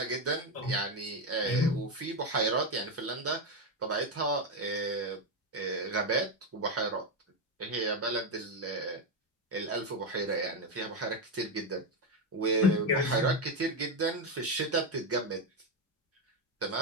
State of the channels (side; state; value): both; normal; correlation 0.08